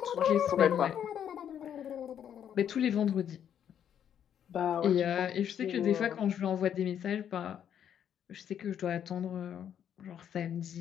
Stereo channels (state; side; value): quieter; right; 9.3 dB